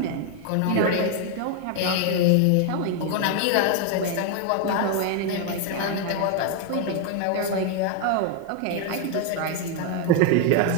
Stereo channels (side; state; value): both; different; correlation 0.01